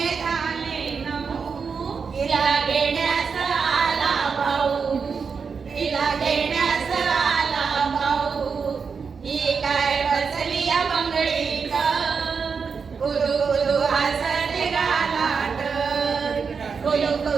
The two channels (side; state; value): left; quieter; 5.6 dB